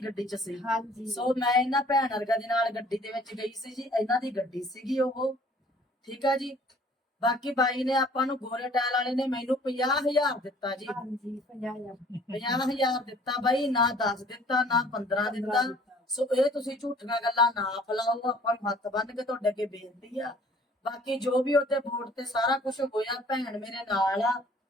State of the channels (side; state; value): both; normal; correlation 0.54